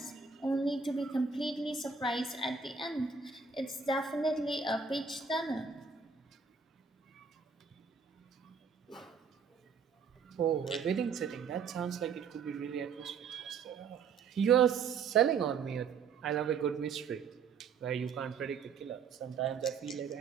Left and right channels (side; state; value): left; quieter; 5.7 dB